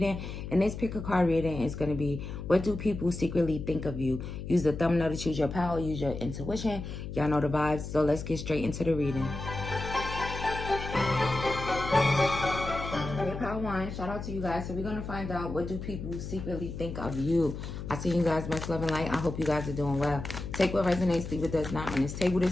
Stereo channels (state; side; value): noise; left; hum, 8 dB below the sound